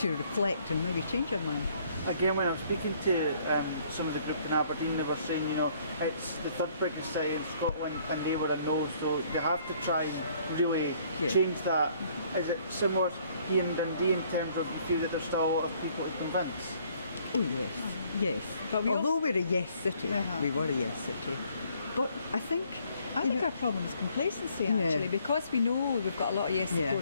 reflect and maybe change their mind. again, when I was speaking to some of the group in Aberdeen, they were saying, it's the third biggest city in Scotland and they were a no, so they have to try and really change that. Is it similar here in Dundee in terms of you feel that there's still a lot of people to convince? Oh yes, yes. But although we're a yes city, we were a yes city. But I think our problem is complacency actually, because we know we've got a lot of yes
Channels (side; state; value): both; inverted; correlation -0.63